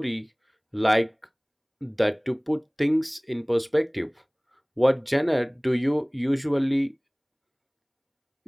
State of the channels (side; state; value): both; identical; correlation 1.00